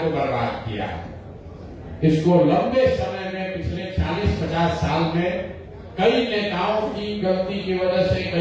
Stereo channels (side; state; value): both; identical; correlation 1.00